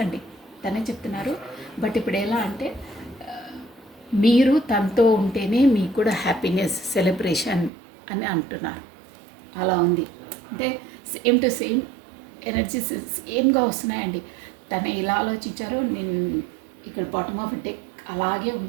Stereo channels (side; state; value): left; drops out; at 7.7 s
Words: తనే చెప్తున్నారు. బట్ ఇప్పుడు ఎలా అంటే మీరు తనతో ఉంటేనే మీకు కూడా హ్యాపీనెస్, సెలబ్రేషన్ అని అంటున్నారు. అలా ఉంది. అంటే సేమ్ టు సేమ్ ఎనర్జీస్ సేమ్గా వస్తున్నాయండి. తను ఎలా ఆలోచించారో నేను ఇక్కడ బాటమ్ ఆఫ్ డెక్ అలాగే